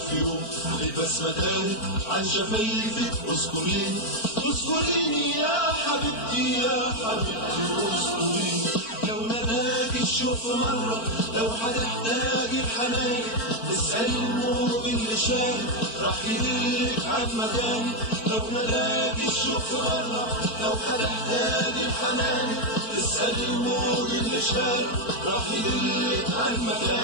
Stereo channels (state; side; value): late; right; 4.4 ms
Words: يوم البسمة تاهت عن شفايفك اسكنيني، اسكنيني يا حبيبتي يا حبيبتي اسكنيني. لو ناداك الشوق مرة، لو هتحتاج الحنان، اسأل الموج اللي شاهد راح يدلك عن مكاني. لو ناداك الشوق مرة، لو هتحتاج الحنان، اسأل الموج اللي شاهد راح يدلك عن